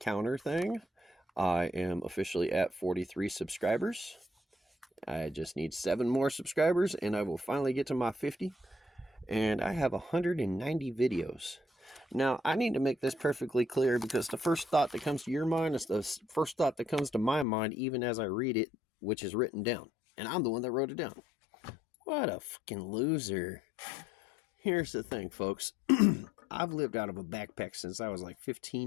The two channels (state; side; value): drops out; right; at 17.4 s